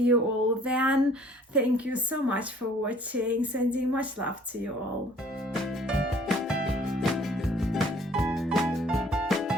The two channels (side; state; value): both; normal; correlation 0.56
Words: you all then. Thank you so much for watching. Sending much love to you all.